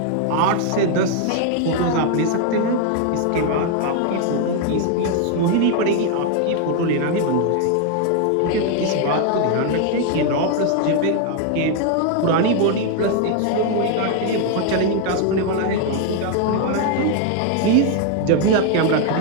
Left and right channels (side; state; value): both; different; correlation 0.00